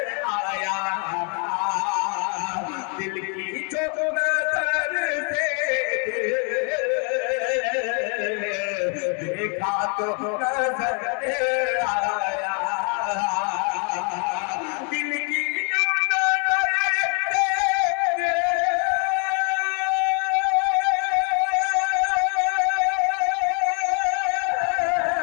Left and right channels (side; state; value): right; quieter; 38.6 dB